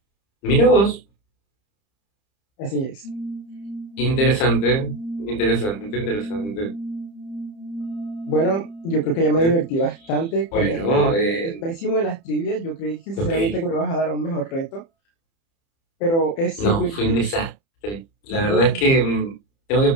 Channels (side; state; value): right; late; 30 ms